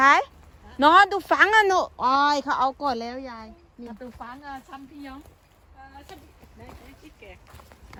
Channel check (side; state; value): both; identical; correlation 1.00